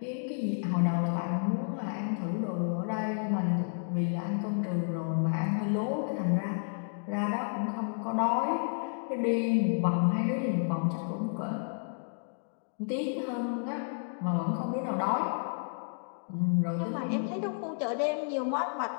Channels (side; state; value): right; silent; digital silence